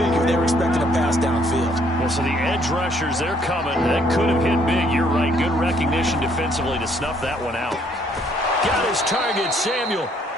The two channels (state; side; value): normal; both; correlation 0.66